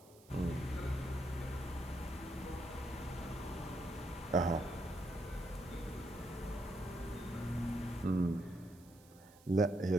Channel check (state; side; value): noise; right; hiss, 25 dB below the sound